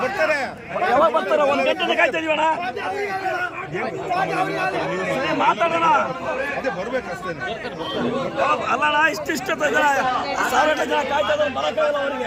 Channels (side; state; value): both; identical; correlation 1.00